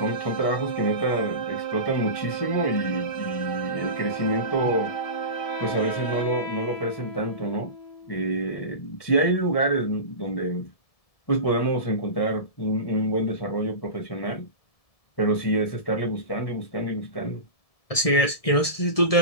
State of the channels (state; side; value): late; right; 1.7 ms